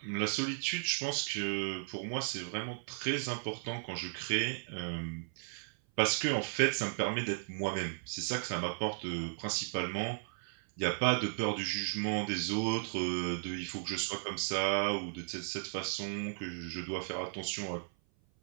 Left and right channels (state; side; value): silent; left; 54 dB below the other